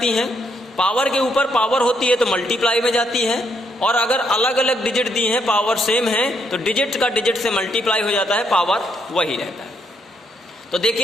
हैं, पावर के ऊपर पावर होती है तो मल्टीप्लाई में जाती है, और अगर अलग अलग डिजिट दी हैं पावर सेम है तो डिजिट का डिजिट से मल्टीप्लाई हो जाता है, पावर वही रहता है। तो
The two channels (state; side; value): normal; both; correlation 0.74